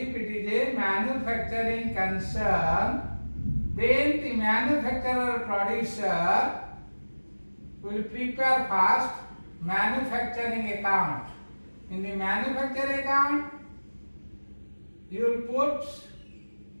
the manufacturer or producer will prepare first manufacturing account. In the manufacturing account, you will put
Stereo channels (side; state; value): both; inverted; correlation -1.00